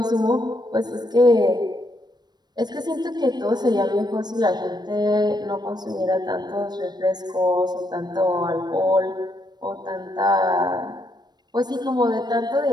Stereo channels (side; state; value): left; late; 0.20 ms